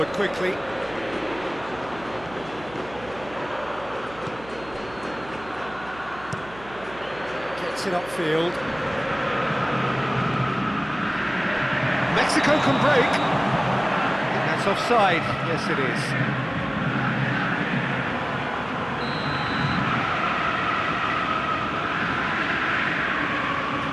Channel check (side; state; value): right; noise; hum, 19 dB below the sound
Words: quickly. Gets it upfield. Mexico can break. I think that's offside. Yes, it is.